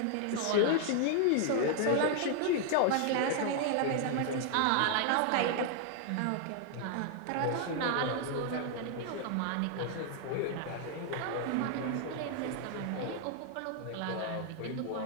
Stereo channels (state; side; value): different; both; correlation 0.00